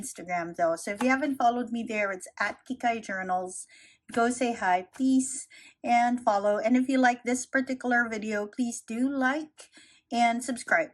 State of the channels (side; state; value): both; identical; correlation 1.00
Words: though. So if you haven't followed me there, it's at Kikai Journals. Go say hi, please, and follow. And if you like this particular video, please do like and subscribe